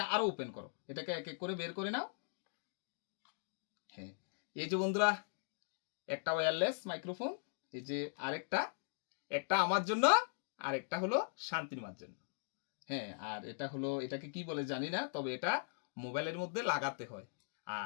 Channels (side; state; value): right; silent; digital silence